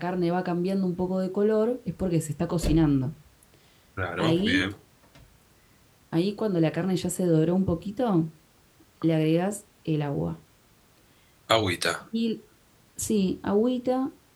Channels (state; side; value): identical; both; correlation 1.00